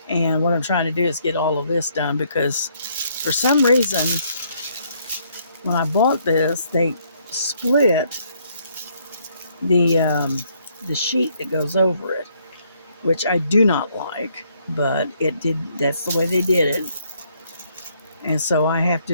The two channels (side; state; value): both; inverted; correlation -0.69